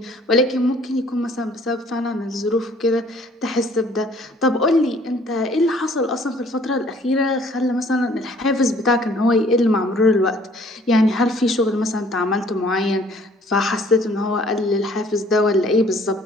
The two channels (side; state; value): both; normal; correlation 0.58